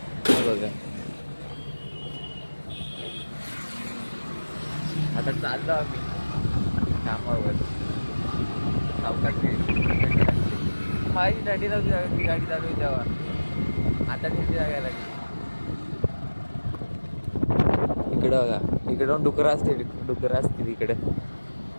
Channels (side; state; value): both; inverted; correlation -1.00